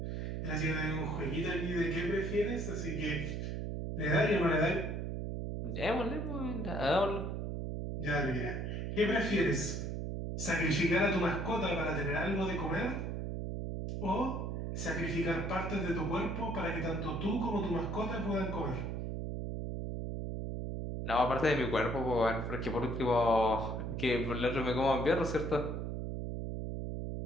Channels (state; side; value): noise; right; hum, 3 dB below the sound